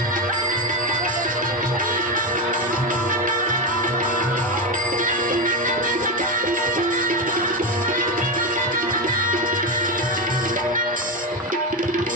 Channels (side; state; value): both; normal; correlation 0.13